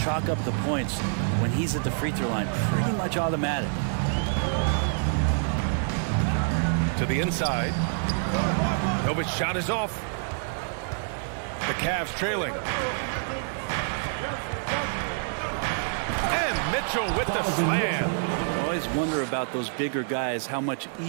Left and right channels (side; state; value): left; silent; 60 dB below the other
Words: chalk up the points when he's at the free throw line. Pretty much automatic. To the inside. Novic's shot is off. The Cavs trailing. And Mitchell with the slam. Well, he's wonder about those bigger guys, how much